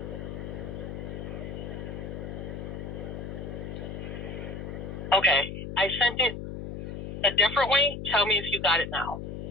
Okay, I sent it a different way. Tell me if you got it now.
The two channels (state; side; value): noise; left; hum, 7 dB below the sound